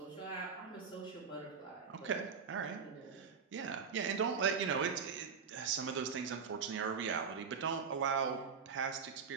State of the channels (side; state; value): left; quieter; 6.1 dB